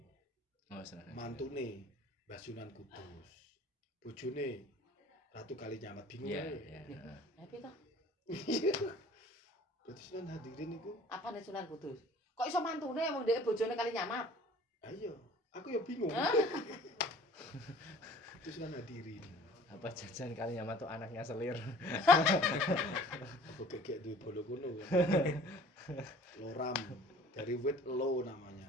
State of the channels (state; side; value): normal; both; correlation 0.49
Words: Oh, senang. Mantune Mbah Sunan Kudus. Bojone Ratu Kalinyamat bingung Iya, ae. iya. Tapi toh, Berarti Sunan Hadirin itu apa nih Sunan Kudus? Kok iso mantune wong dhek bojone kali nyamat? ayo, aku ya bingung. Hah? Itu Sunan Hadirin. Apa jajan kali nyama tuh anaknya selir. Apa gegek duwe bolo kuno kan. Loram. Dari wit lo